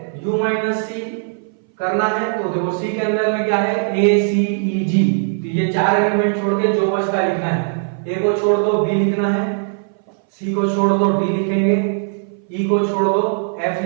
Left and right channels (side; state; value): left; silent; 61 dB below the other